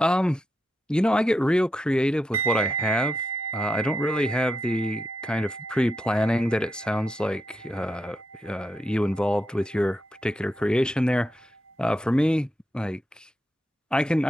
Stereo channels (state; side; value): normal; both; correlation 0.85